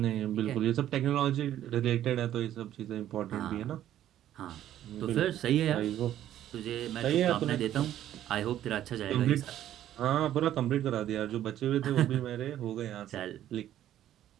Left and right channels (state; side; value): quieter; left; 11.9 dB